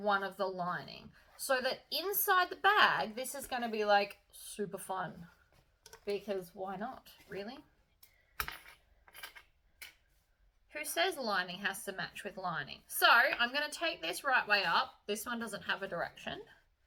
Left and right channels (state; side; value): identical; both; correlation 1.00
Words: one of the lining. So that inside the bag, this is going to be like super fun. Because why not, really? Who says lining has to match with lining? So I'm going to take this right way up. This one doesn't have a direction.